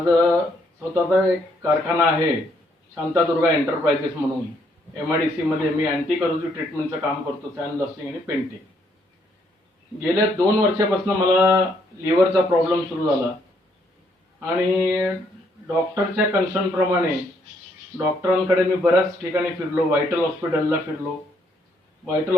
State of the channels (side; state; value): both; normal; correlation 0.71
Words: स्वतःचा एक कारखाना आहे, शांतादुर्गा एंटरप्राइजेस म्हणून. MIDC मध्ये मी अँटी करोजिव ट्रीटमेंटचं काम करतो, सॅन ब्लास्टिंग आणि पेंटिंग. गेल्या 2 वर्षापासून मला लिव्हरचा प्रॉब्लेम सुरू झाला आणि डॉक्टरच्या कन्सर्नप्रमाणे डॉक्टरांकडे मी बऱ्याच ठिकाणी फिरलो. व्हायटल हॉस्पिटलला फिरलो, व्हायटल